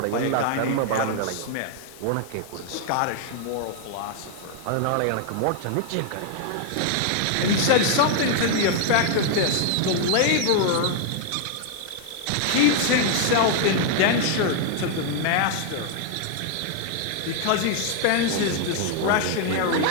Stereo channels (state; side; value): different; both; correlation 0.00